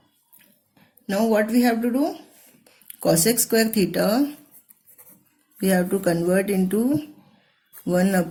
Now what we have to do? Cosec square theta we have to convert into 1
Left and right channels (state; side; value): identical; both; correlation 1.00